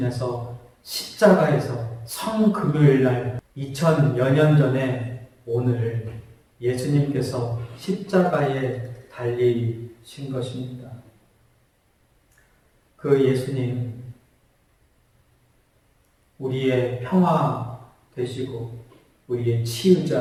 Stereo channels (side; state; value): both; identical; correlation 1.00